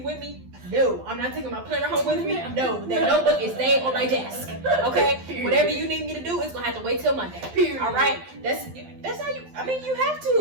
with me. No. I'm not taking my planner home with me. No. That notebook is staying on my desk. Okay? Period. Whatever you need me to do, it's going to have to wait till Monday. Period. All right? That's how you... I mean, you have to.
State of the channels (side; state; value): left; late; 12 ms